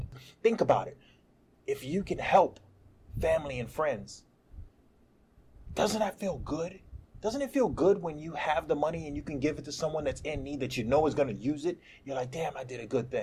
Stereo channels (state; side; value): identical; both; correlation 1.00